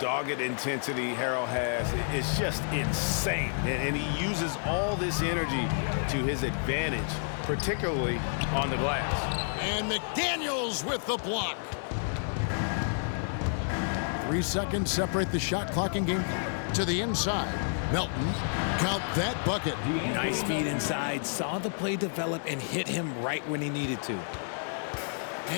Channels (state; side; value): silent; right; digital silence